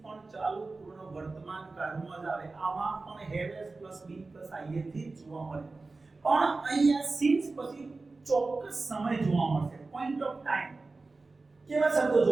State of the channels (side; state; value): left; quieter; 3.6 dB